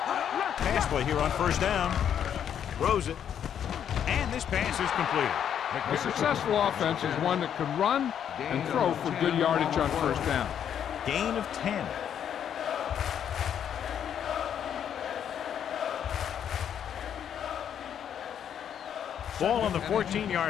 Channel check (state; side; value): quieter; right; 9.0 dB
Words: Pass play here on 1st down. Throws it. And this pass is completed. A successful offense is one that can run and throw for good yardage on 1st down. Gain of 10. Ball on the